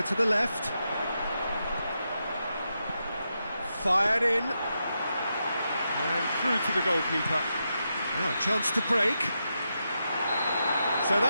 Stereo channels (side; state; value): both; inverted; correlation -0.86